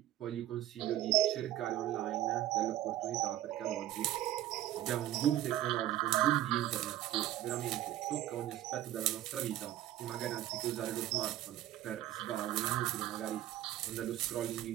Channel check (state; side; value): quieter; left; 13.3 dB